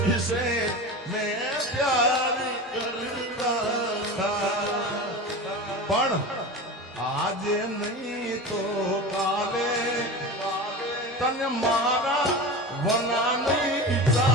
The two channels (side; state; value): both; normal; correlation 0.29